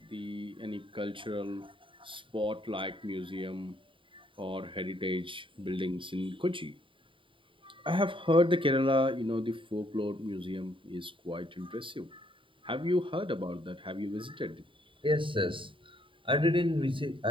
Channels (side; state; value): left; late; 0.25 ms